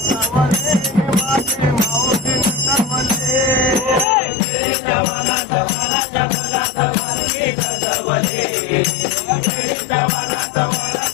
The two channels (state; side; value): drops out; right; at 4.0 s